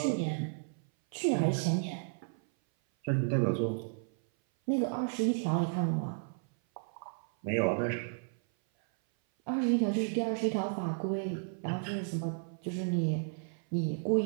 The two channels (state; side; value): silent; left; 56 dB below the other